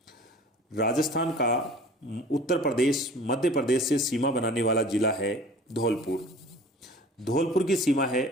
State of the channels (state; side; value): normal; both; correlation 0.45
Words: राजस्थान का उत्तर प्रदेश मध्य प्रदेश से सीमा बनाने वाला जिला है धौलपुर। धौलपुर की सीमा